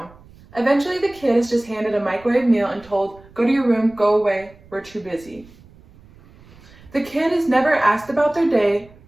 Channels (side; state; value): right; noise; rumble, 25 dB below the sound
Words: Eventually, the kid is just handed a microwave meal and told, go to your room, go away, we're too busy. The kid is never asked about their day